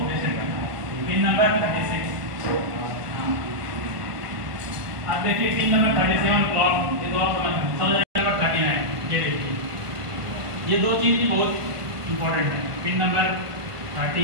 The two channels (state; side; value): late; left; 1.5 ms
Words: रिसेट करना है। Pin number 36। अब देखिए पिन नंबर 37 क्लॉक, ये तो आप समझ नंबर 39। ये देखिए ये दो चीज भी बहुत इंपॉर्टेंट है। Pin number